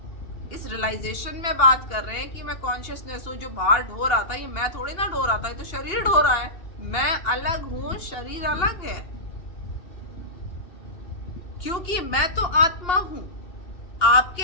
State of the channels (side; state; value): right; late; 2.8 ms